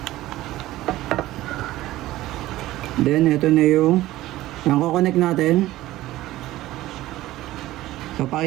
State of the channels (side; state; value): left; quieter; 16.1 dB